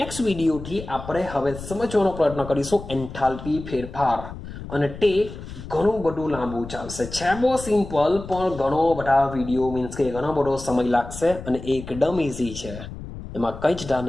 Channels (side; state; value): left; noise; rumble, 12 dB below the sound